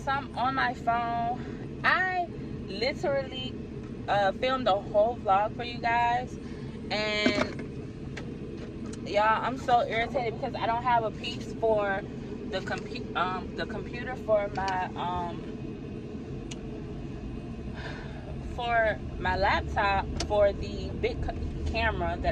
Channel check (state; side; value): identical; both; correlation 1.00